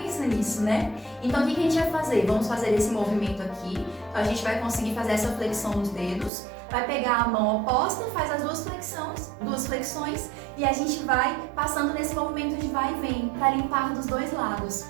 nisso, né? Então o que a gente vai fazer? Vamos fazer esse movimento aqui, então a gente vai conseguir fazer essa flexão nos dedos, vai pegar a mão oposta, faz as duas flexões e a gente vai passando nesse movimento de vai e vem para limpar dos dois lados,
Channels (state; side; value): drops out; left; at 6.3 s